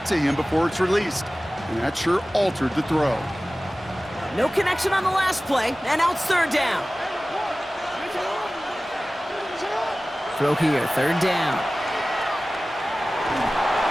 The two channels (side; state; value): both; normal; correlation 0.97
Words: to him before it's released. And that sure altered the throw. No connection on the last play, and now it's third down. Throw here, third down.